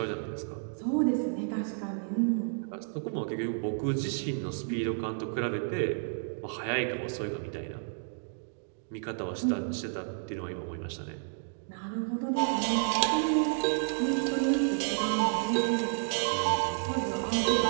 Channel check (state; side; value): silent; left; digital silence